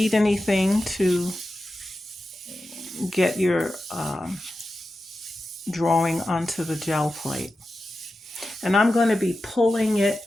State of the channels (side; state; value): both; normal; correlation 0.92